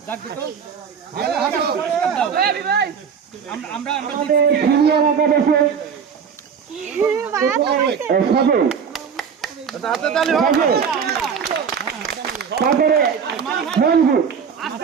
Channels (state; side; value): quieter; left; 6.8 dB